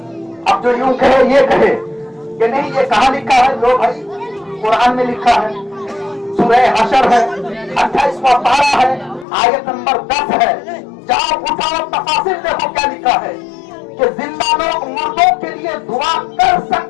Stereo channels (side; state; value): right; drops out; at 9.2 s